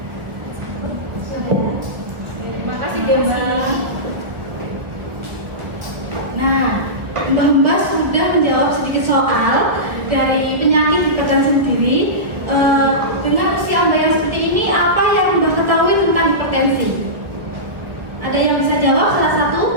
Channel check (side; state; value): left; late; 1.7 ms